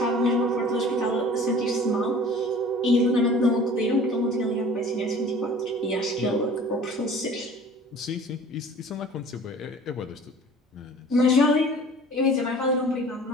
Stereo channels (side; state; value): both; normal; correlation 0.46